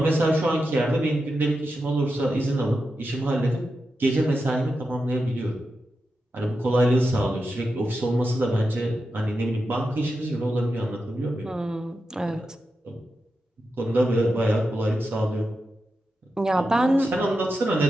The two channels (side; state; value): both; normal; correlation 0.89